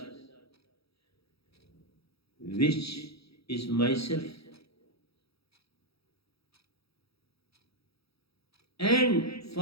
which is myself. And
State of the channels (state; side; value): late; right; 0.77 ms